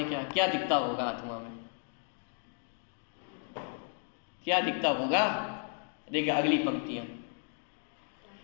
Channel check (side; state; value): right; silent; 55 dB below the other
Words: क्या दिखता होगा आत्मा में, क्या दिखता होगा, देखिए अगली पंक्तियां,